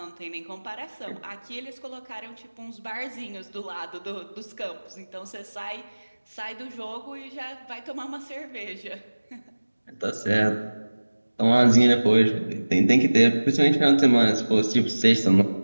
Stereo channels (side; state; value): both; inverted; correlation -1.00